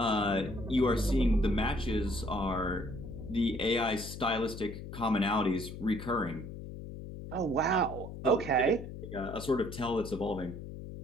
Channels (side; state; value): left; noise; hum, 10 dB below the sound